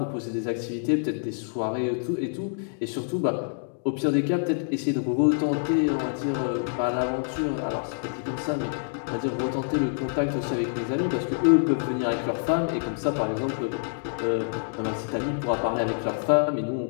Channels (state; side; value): silent; right; digital silence